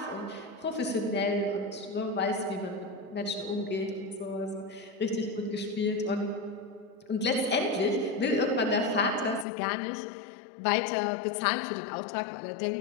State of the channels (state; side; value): drops out; right; at 9.5 s